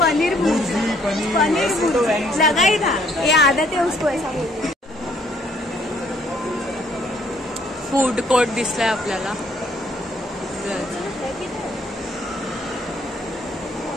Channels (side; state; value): both; normal; correlation 0.65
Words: लगाई था, ये आदत है उसको ऐसा बोलने. फूड कोर्ट दिसलाय आपल्याला.